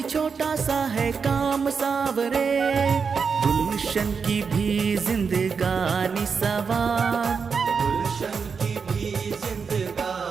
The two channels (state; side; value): quieter; left; 5.7 dB